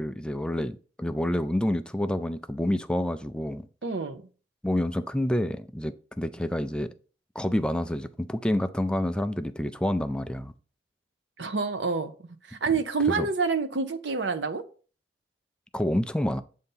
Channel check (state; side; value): normal; both; correlation 0.66